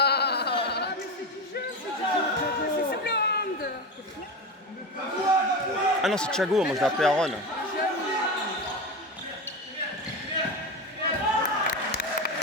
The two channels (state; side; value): normal; both; correlation 0.20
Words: C'est sur le hand. Ah non, c'est Thiago, moi je l'ai appelé Aaron.